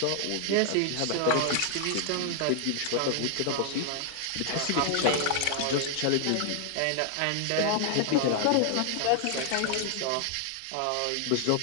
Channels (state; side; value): different; both; correlation 0.00